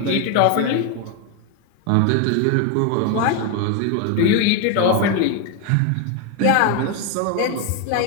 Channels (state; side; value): different; both; correlation 0.01